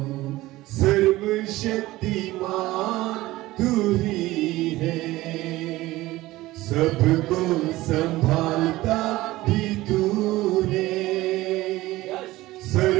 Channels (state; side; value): quieter; left; 17.9 dB